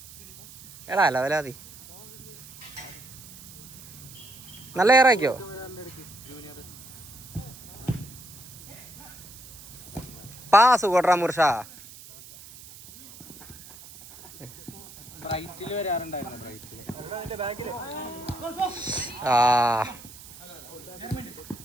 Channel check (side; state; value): right; noise; hiss, 17 dB below the sound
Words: എടാ അല്ല വലാതി നല്ല ഏറാക്കിയോ? പാസ് കൊട്രാ മുർഷ.